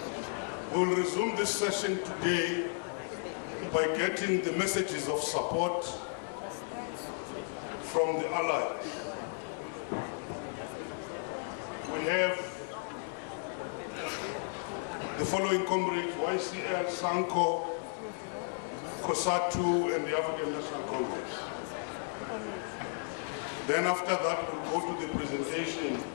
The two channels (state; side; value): silent; right; 55 dB below the other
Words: We'll resume this session today by getting the messages of support from the allies. We have the following comrades: YCL, Sanco, Cosatu, and the African National Congress. Then after that, we'll go to the presentation